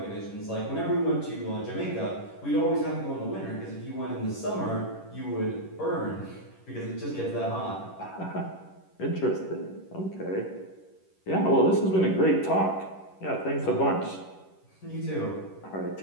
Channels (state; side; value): late; right; 11 ms